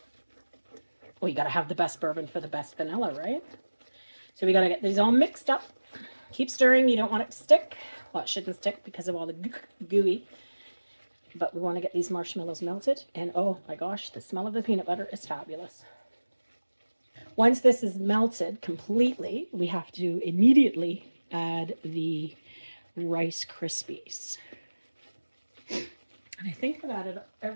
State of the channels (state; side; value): inverted; both; correlation -1.00